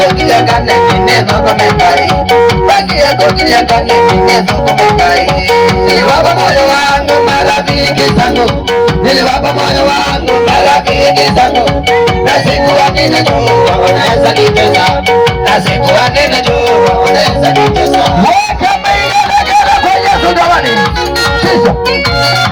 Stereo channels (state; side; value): identical; both; correlation 1.00